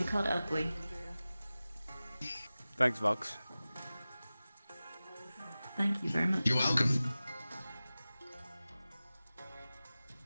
called Oakley. Thanks, Vox. Thank you very much. You're welcome.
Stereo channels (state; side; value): inverted; both; correlation -0.96